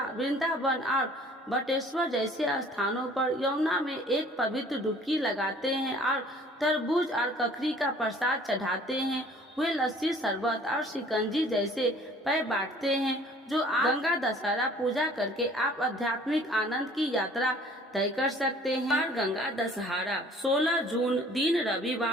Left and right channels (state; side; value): normal; both; correlation 0.53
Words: वृंदावन और बटेश्वर जैसे स्थानों पर यमुना में एक पवित्र डुबकी लगाते हैं और तरबूज और ककड़ी का प्रसाद चढ़ाते हैं। वे लस्सी शरबत और शिकंजी जैसे पेय बांटते हैं। जो गंगा दशहरा पूजा करके आप आध्यात्मिक आनंद की यात्रा तय कर सकते हैं। बार गंगा दशहरा 16 जून दिन